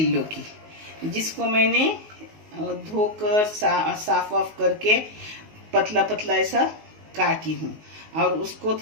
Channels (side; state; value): left; late; 19 ms